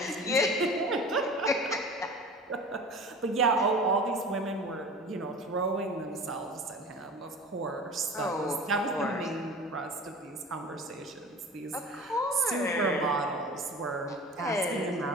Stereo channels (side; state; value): both; normal; correlation 0.38